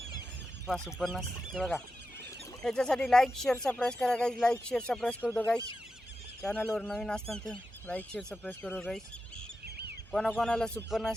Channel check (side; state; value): both; normal; correlation 0.90